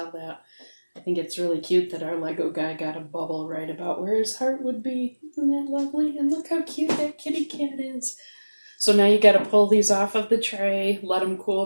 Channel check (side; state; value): both; inverted; correlation -1.00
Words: that. I think it's really cute that our Lego guy got a bubble right about where his heart would be. Isn't that lovely? And look how cute that kitty cat is. So now you got to pull these off of the tray, let them cool